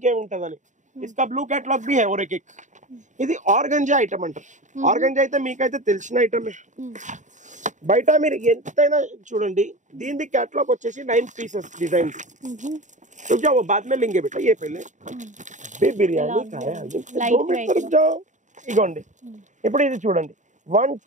ఏముంటదని इसका ब्लू कैटलॉग भी है और एक ఇది ఆర్గంజా ఐటమ్ అంటారు ఆర్గంజా అయితే మీకైతే తెలిసిన ఐటమే బయట మీరు ఎంతైనా చూడండి దీని कैटलॉग వచ్చేసి 9 పీసెస్ డిజైన్స్ तो क्या वो बाद में लेंगे बेटा ये पहले बे बिरयानी खाया 2 मिनट रुक जाओ ఇగోండి ఇప్పుడు ఇది చూడండి 1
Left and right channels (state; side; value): late; left; 0.36 ms